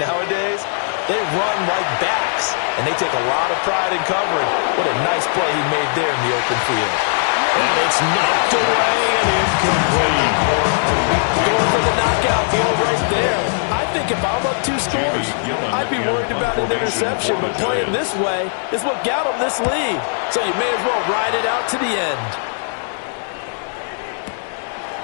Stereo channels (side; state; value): right; silent; digital silence